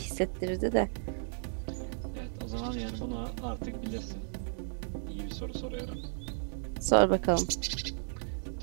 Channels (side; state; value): left; silent; digital silence